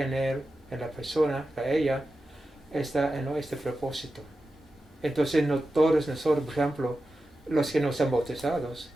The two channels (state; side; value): normal; both; correlation 0.92